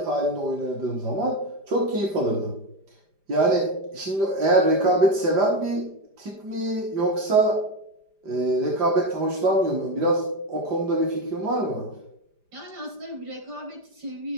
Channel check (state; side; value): late; left; 5.0 ms